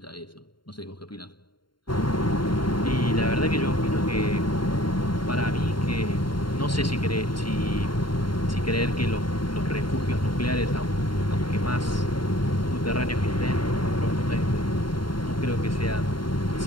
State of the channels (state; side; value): late; right; 0.72 ms